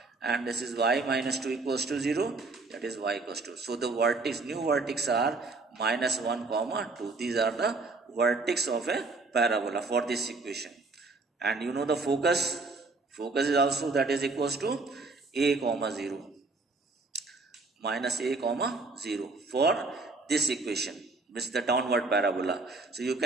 and this is y minus 2 equals to 0, that is y equals to. So the vertex, new vertex are minus 1 comma 2. These are the vertex of a parabola for this equation. And you know the focus is also, that is equals to a comma 0 minus a comma 0 for this equation, which is the downward parabola. So you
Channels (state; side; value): quieter; left; 3.6 dB